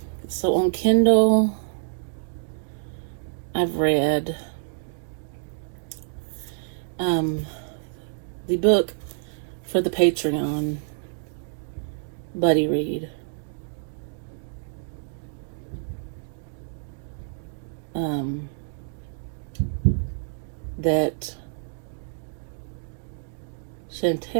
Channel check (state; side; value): silent; left; digital silence